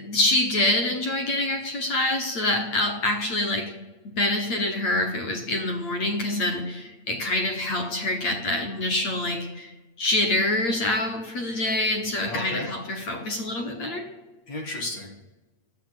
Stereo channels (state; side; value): late; right; 8.7 ms